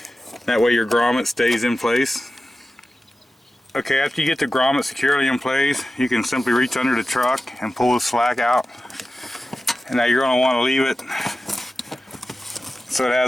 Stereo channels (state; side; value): normal; both; correlation 0.94